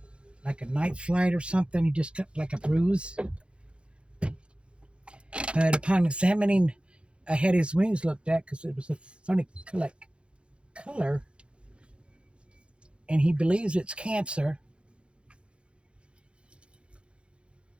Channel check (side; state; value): left; late; 0.057 ms